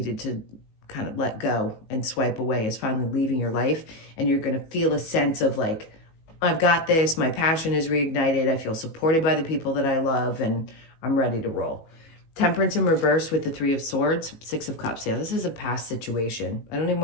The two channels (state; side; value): late; right; 18 ms